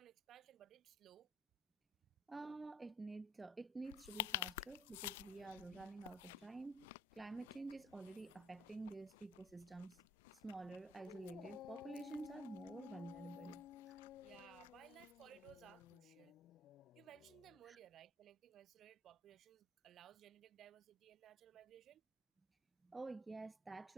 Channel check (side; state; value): both; normal; correlation 0.55